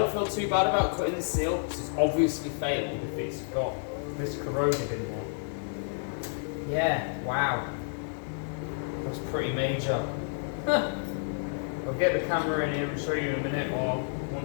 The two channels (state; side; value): silent; right; digital silence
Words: feel too bad about cutting the seal because it's obviously failed if it's got this corroded in there. Yeah, wow. That's pretty major. I'll get the camera in here and show you in a minute, or